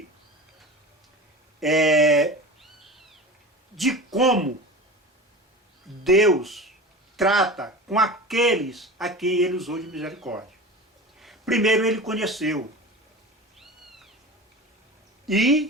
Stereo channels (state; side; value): normal; both; correlation 0.33